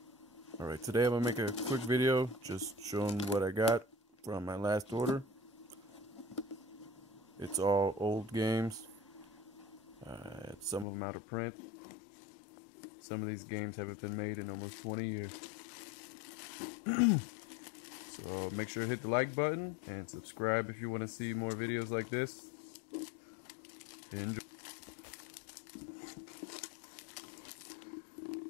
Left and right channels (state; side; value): drops out; right; at 10.9 s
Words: Alright, today I'm going to make a quick video just showing what I got from my last order. It's all old games. Some of them out of print. Some of these games haven't been made in almost 20 years. So make sure to hit the like button and subscribe if you want to see more videos like this. Enjoy.